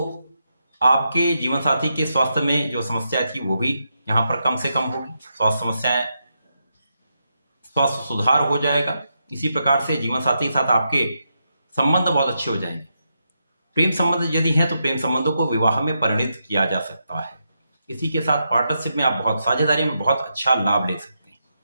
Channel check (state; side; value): inverted; both; correlation -0.84